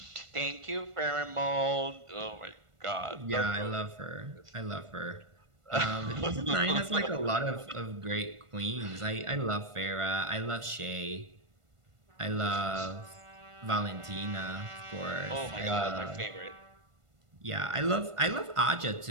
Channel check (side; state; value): left; late; 1.5 ms